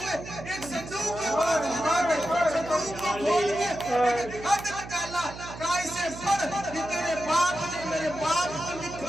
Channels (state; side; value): noise; right; hum, 13 dB below the sound